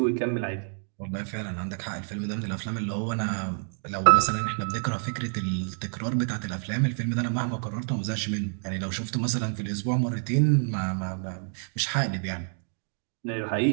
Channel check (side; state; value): left; silent; 59 dB below the other